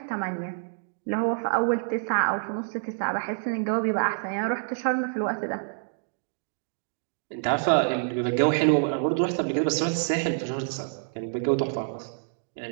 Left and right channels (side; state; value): left; silent; digital silence